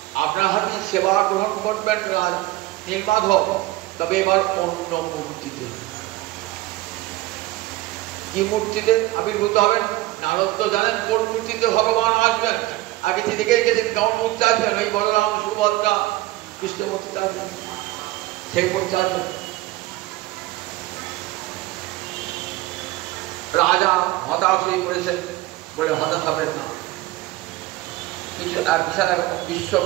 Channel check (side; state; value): left; quieter; 17.9 dB